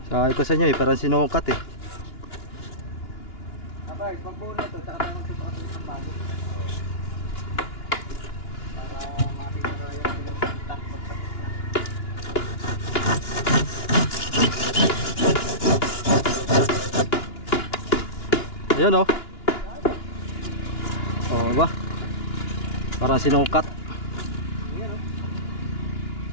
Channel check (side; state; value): right; late; 2.9 ms